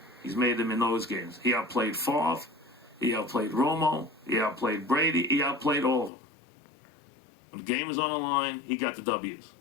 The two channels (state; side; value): drops out; right; at 6.1 s